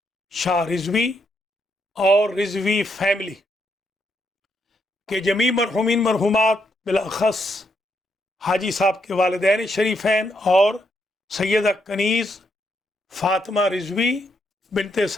شاہ رضوی اور رضوی فیملی کے جمیع مرحومین مرحومات بالاخص حاجی صاحب کے والدین شریفین اور سیدہ کنیز فاطمہ رضوی بنت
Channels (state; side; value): normal; both; correlation 0.78